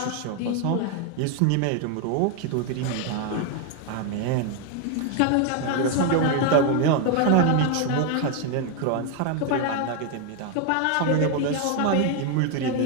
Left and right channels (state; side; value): different; both; correlation 0.01